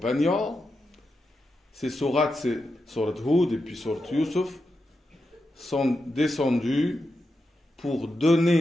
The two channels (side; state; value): both; normal; correlation 0.88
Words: ces sourates, c'est sourate Hud et puis sourate Yusuf, sont descendues pour